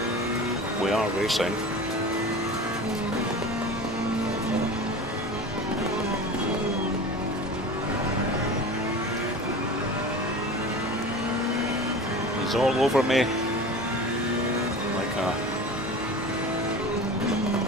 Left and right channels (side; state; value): both; normal; correlation 0.34